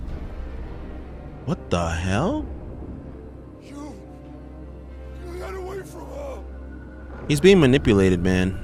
What the hell? He's being manipulated,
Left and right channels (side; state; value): both; identical; correlation 1.00